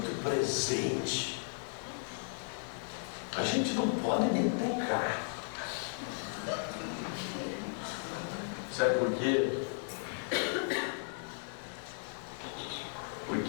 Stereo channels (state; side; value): silent; right; 54 dB below the other